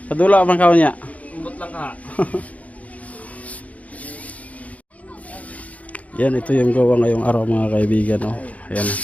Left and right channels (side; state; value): right; late; 0.069 ms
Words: Padula man kaon niya. Umbot lang ka. Yan, ito yung gawa ngayong araw mga kaibigan. Oh. Ayan,